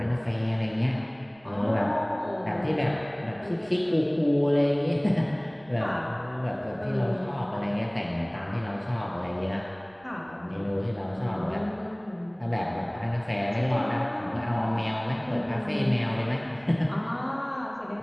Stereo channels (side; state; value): right; noise; rumble, 29 dB below the sound